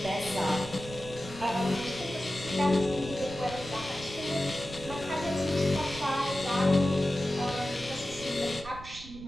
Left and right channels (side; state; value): right; noise; rumble, 15 dB below the sound